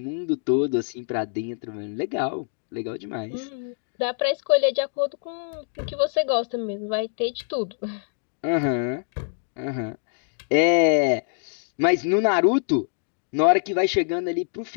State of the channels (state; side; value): silent; right; digital silence